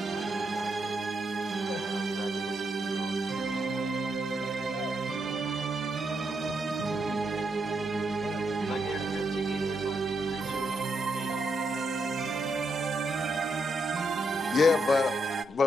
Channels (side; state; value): both; normal; correlation 0.80